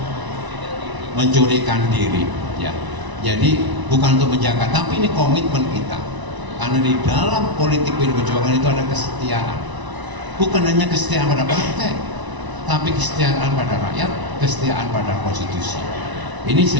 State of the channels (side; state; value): left; late; 1.0 ms